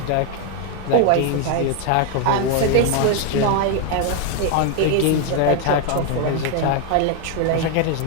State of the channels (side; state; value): both; different; correlation 0.00